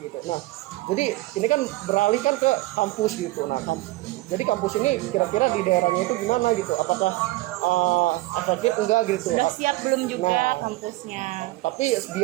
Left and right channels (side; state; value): left; quieter; 19.2 dB